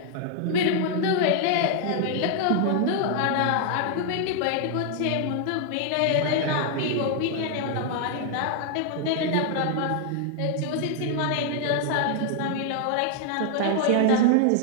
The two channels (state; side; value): different; both; correlation 0.00